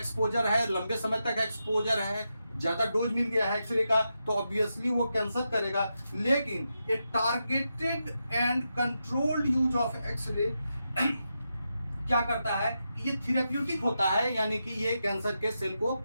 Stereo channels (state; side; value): inverted; both; correlation -0.87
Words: है, लंबे समय तक एक्सपोजर है, ज्यादा डोज मिल गया है एक्सरे का, तो ऑब्वियसली वो कैंसर करेगा। लेकिन a targeted and controlled use of X ray क्या करता है, ये थेरेप्यूटिक होता है, यानी कि ये कैंसर के सेल को